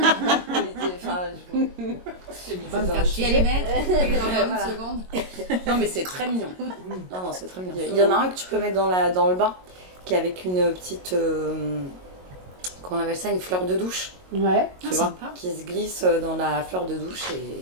Va me faire chier les mettre et dans Voilà. une seconde. Non, mais c'est très mignon. Non, c'est très mignon. Il y en a un que tu peux mettre dans le bain, qui est avec une petite. Comment on appelle ça? Une fleur de douche. Ouais. Tu Ah, vois, sympa. qui se glisse dans la fleur de douche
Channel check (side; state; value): left; late; 22 ms